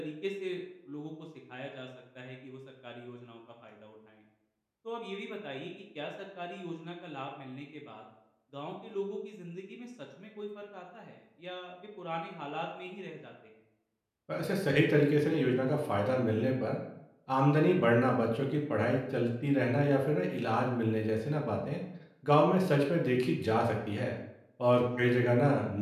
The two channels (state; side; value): identical; both; correlation 1.00